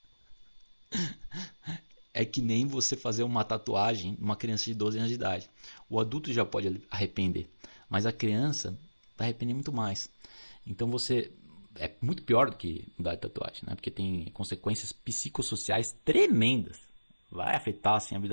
É que nem você fazer uma tatuagem numa criança de 12 anos de idade. O adulto já pode arrepender, mas a criança vai arrepender muito mais. Então você é muito pior do que mudar de tatuagem, né? Porque tem consequências psicossociais tremendas. Vai afetar assim, a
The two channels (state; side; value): inverted; both; correlation -1.00